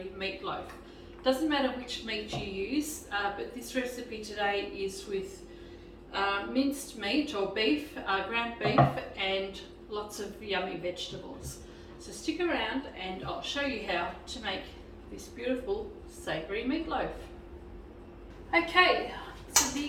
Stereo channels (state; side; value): identical; both; correlation 1.00